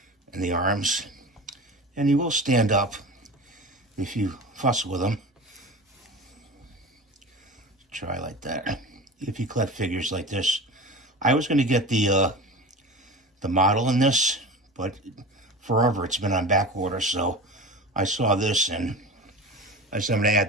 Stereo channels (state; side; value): normal; both; correlation 0.32